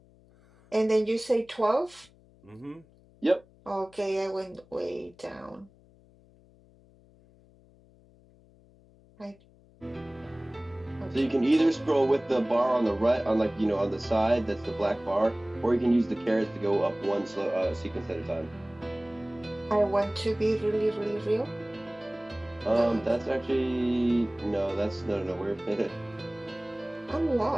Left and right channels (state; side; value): noise; left; hum, 28 dB below the sound